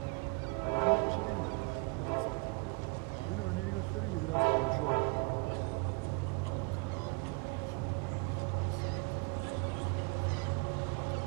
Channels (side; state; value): left; quieter; 29.7 dB